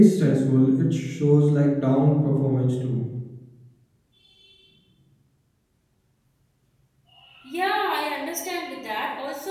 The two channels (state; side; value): identical; both; correlation 1.00